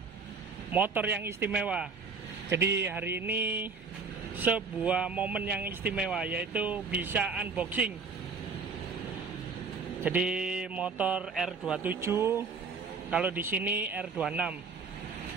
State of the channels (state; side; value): quieter; left; 4.7 dB